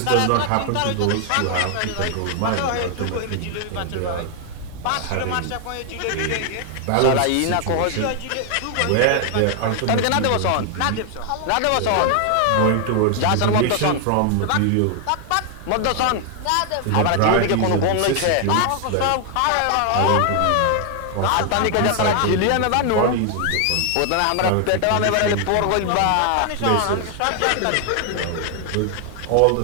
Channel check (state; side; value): different; both; correlation 0.00